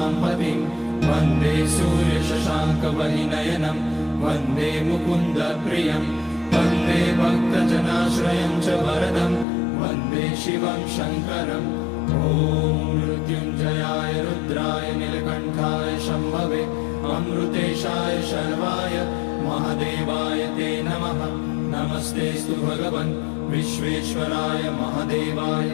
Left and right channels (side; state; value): right; drops out; at 9.5 s